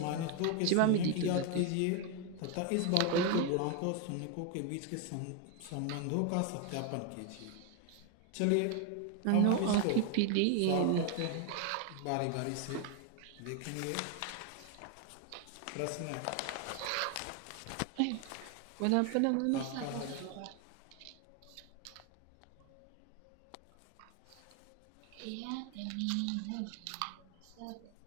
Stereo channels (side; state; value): both; different; correlation 0.01